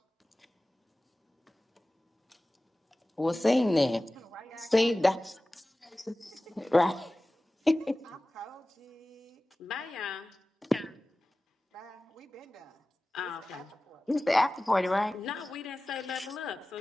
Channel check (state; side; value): normal; both; correlation 0.97